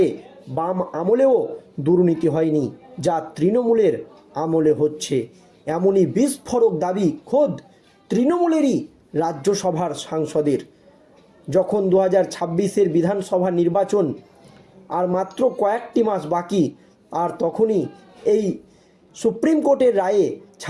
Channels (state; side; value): identical; both; correlation 1.00